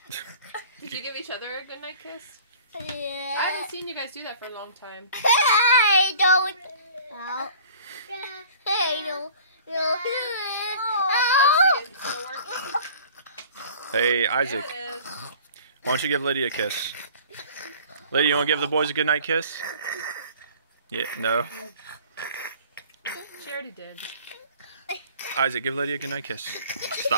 Did you give each other a goodnight kiss? Yeah. I haven't seen you guys do that for a long time. Hey, don't. No. Hey, no. No. Let's see, is it still working? Hey, Isaac. There it is. Why don't you give Lydia a kiss? Lydia, you want to give the boys a goodnight kiss? Yeah, no. She already did. Isaac, give Lydia a goodnight kiss.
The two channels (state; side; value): inverted; both; correlation -0.48